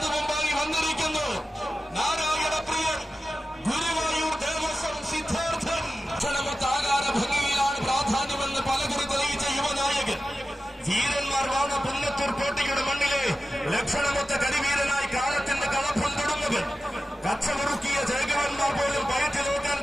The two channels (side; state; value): both; normal; correlation 0.94